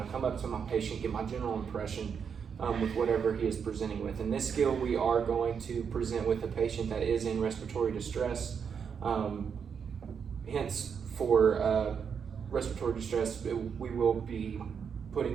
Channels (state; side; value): quieter; left; 6.8 dB